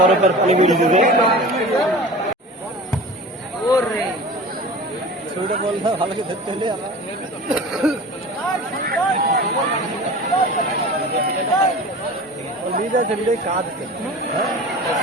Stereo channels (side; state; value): both; normal; correlation 0.37